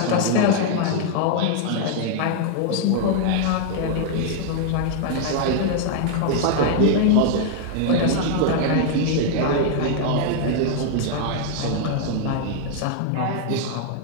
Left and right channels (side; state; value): both; different; correlation 0.00